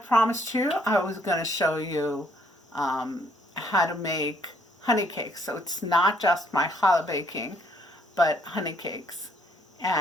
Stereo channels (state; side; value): normal; both; correlation 0.66